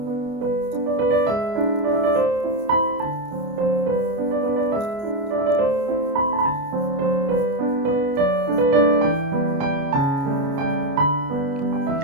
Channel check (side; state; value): left; late; 29 ms